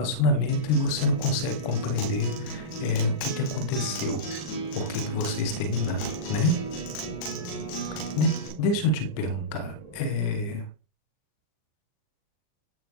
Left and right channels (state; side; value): late; right; 39 ms